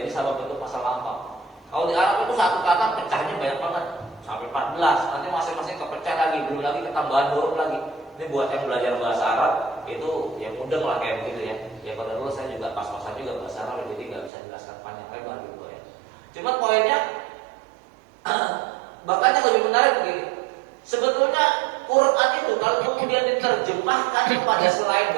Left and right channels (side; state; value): left; drops out; at 14.3 s